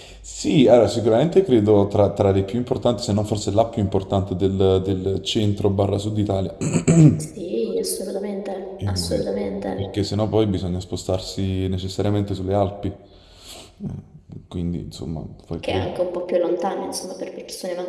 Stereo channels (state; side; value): identical; both; correlation 1.00